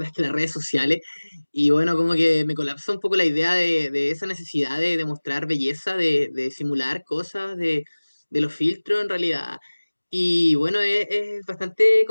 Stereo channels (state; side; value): inverted; both; correlation -1.00